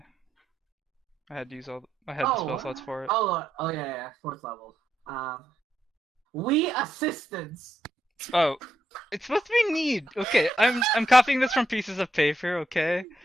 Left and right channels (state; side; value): normal; both; correlation 0.81